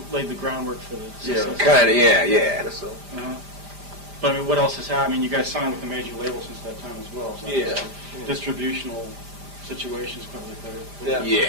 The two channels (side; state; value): left; late; 5.0 ms